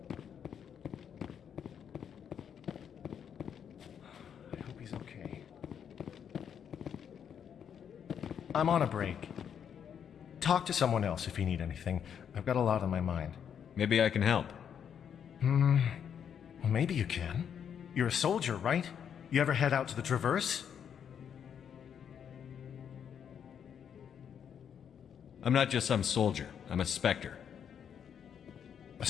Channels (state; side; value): quieter; right; 8.2 dB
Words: I hope he's okay. I'm on a break. Talk to someone else if you need anything. I've got a lot on my mind. Maybe I can help. Well, maybe you can. You're a soldier, right? You ever head out to the Traverse? I'm not just some soldier. I'm a Spectre. A